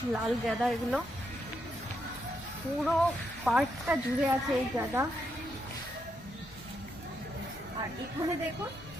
লাল গাঁদা, এগুলো পুরো পার্কটা জুড়ে আছে এই গাঁদা। আর এখানে দেখুন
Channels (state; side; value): normal; both; correlation 0.80